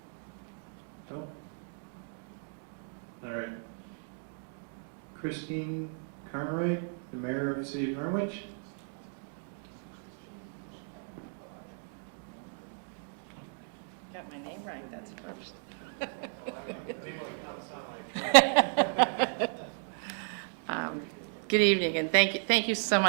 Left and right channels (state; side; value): silent; left; 55 dB below the other